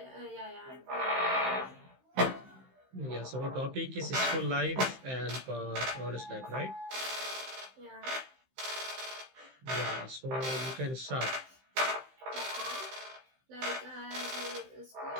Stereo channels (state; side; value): late; left; 15 ms